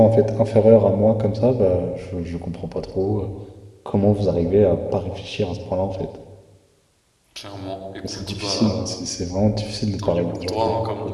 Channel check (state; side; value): identical; both; correlation 1.00